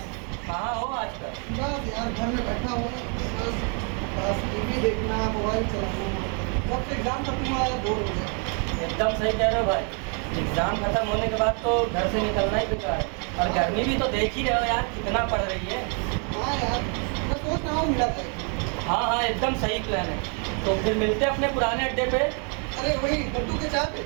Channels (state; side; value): quieter; left; 38.5 dB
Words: कहाँ हो आजकल? बस यार घर में बैठा हूँ, बस टीवी देखना, मोबाइल चलाना। जब से एग्जाम खत्म हुआ है बोर हो गया। एकदम सही कह रहे हो भाई। एग्जाम खत्म होने के बाद तो घर से निकलना ही बेकार है। और गर्मी भी तो देख ही रहे हो यार कितना पड़ रही है। हाँ यार, मैं सोच रहा हूँ मिला जाए। हाँ हाँ एकदम सही प्लान है। तो फिर मिलते अपने पुराने अड्डे पे। अरे वही लड्डू के चाय पे।